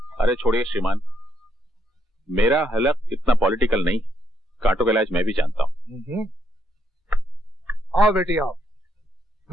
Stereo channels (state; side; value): normal; both; correlation 0.76